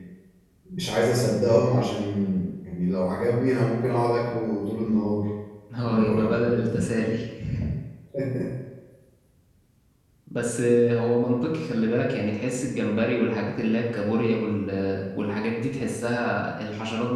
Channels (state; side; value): identical; both; correlation 1.00